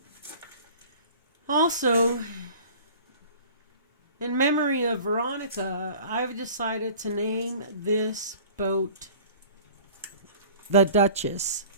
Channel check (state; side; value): inverted; both; correlation -0.45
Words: Also, in memory of Veronica, I've decided to name this boat the Duchess.